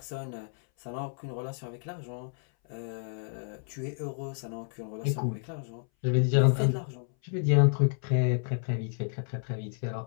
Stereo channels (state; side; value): silent; right; 57 dB below the other